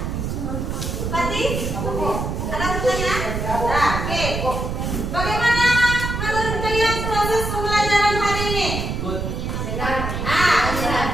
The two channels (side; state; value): right; noise; rumble, 3 dB below the sound